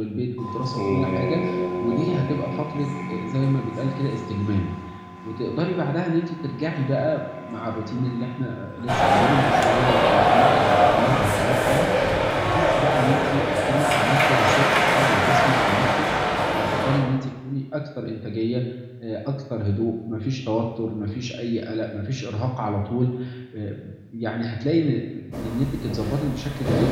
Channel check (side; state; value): both; identical; correlation 1.00